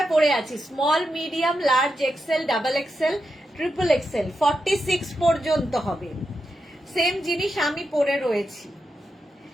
পরে আছি small, medium, large, XL, double XL, triple XL, 46 পর্যন্ত হবে। সেম জিনিস আমি পরে রয়েছি,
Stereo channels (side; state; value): both; normal; correlation 0.86